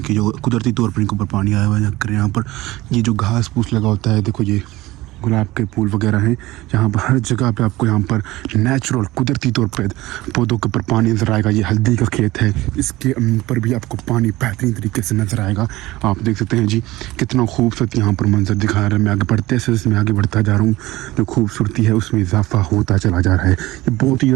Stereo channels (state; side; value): quieter; left; 18.5 dB